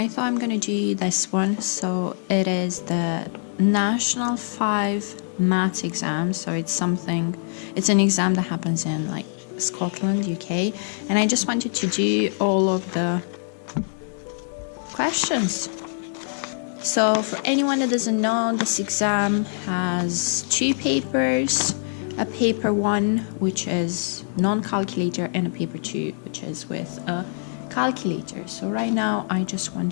thought I'm gonna do this one. So it is the National 5 Maths exam. So it's an exam that happens in like Scotland, UK, and I just wanted to do all of the questions. So for anyone that doesn't know, this exam has 2 papers, a paper 1 which is non-calculator and a paper 2 which is with a calculator. So right now I just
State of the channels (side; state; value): right; silent; digital silence